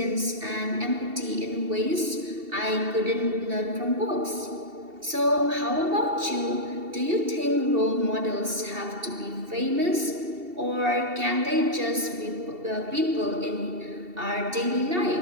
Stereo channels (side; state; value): left; late; 2.7 ms